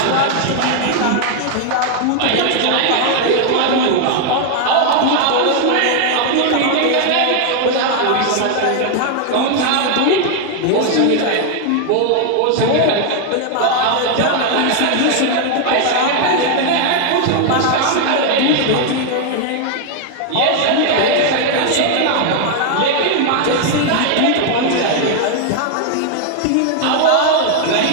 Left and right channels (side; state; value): both; different; correlation 0.00